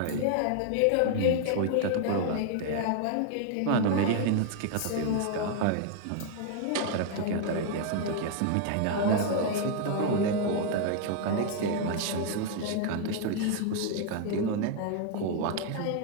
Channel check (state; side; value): different; both; correlation 0.00